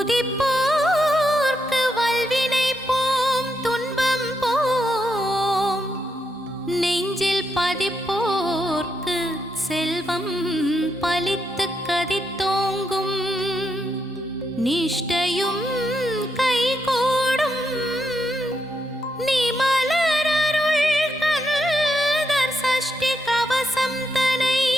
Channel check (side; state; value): both; normal; correlation 0.81